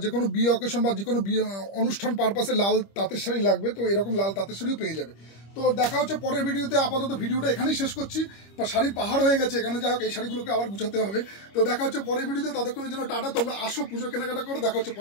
যে কোনো বিয়ে অকেশন বা যে কোনো বিয়ে অনুষ্ঠান পারপাসে লাল তাঁতের শাড়ি লাগবে, তো এরকম লাল তাঁতের শাড়িও পেয়ে যাবে। তো দেখা হচ্ছে পরের ভিডিওতে। আপাতত ভিডিওটা এখানেই শেষ করছি। বা শাড়ির পাহাড় হয়ে গেছে এখানে, যাই হোক, এই শাড়িগুলোকে আবার গুছাতে হবে। তো দেখা হচ্ছে পরের ভিডিওতে। ততক্ষণের জন্য টাটা। তোমরা আসো, পুজো কেনাকাটা করো। দেখা হচ্ছে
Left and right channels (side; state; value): right; late; 25 ms